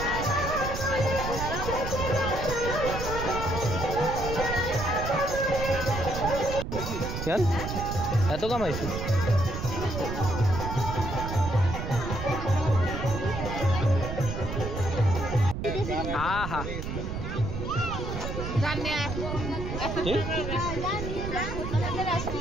यार এত কম আইছে। আহা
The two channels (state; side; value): noise; right; rumble, 5 dB below the sound